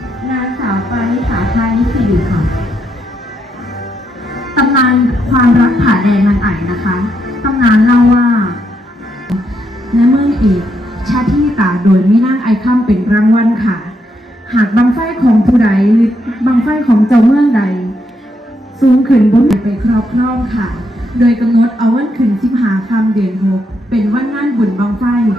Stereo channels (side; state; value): both; normal; correlation 0.78